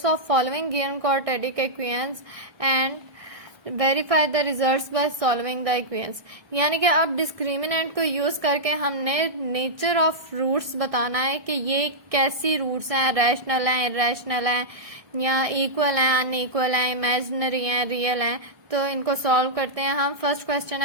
of following given quadratic equations and verify the results by solving the equations. यानी कि अब डिस्क्रिमिनेंट को यूज करके हमने नेचर ऑफ रूट्स बताना है कि ये कैसी रूट्स हैं, रैशनल हैं, इरेशनल हैं, या इक्वल हैं, अनइक्वल हैं, इमेजिनरी हैं, रियल हैं। तो इनको सॉल्व करते हैं हम। फर्स्ट क्वेश्चन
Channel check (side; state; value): left; late; 1.6 ms